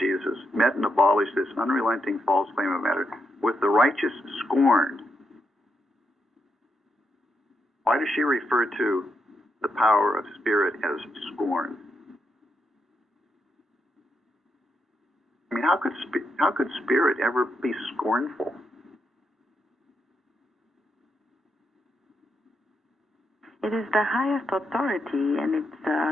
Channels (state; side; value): normal; both; correlation 0.82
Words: met and abolished this unrelenting false claim of matter with the righteous scorned. Why does she refer to the power of spirit as scorn? I mean, how could spirit ever be scornful? It is the highest authority, and